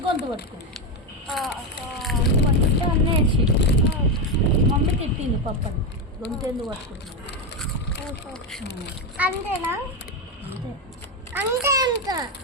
గొంతు పట్టుకుంది. గొంతు పట్టుకుంటే అన్న ఏడ్చి మమ్మీ తిట్టింది పప్పని, గొంతు ఎందుకు పట్టుకుంటున్నావు. అంతేనా? అంతే అంతే అంత.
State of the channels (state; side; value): normal; both; correlation 0.10